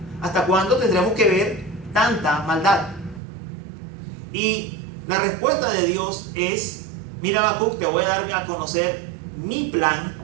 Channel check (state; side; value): drops out; left; at 3.2 s